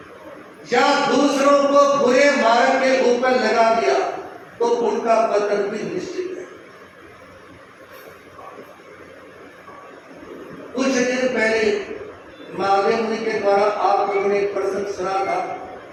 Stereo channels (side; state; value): both; identical; correlation 1.00